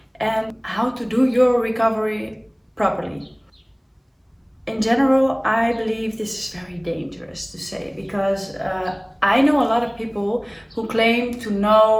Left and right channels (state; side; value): identical; both; correlation 1.00